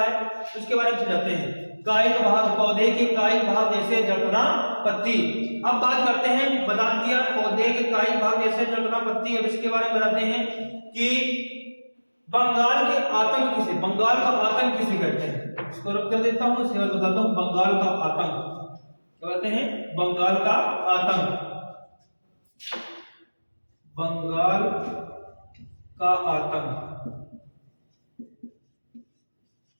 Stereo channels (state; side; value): inverted; both; correlation -1.00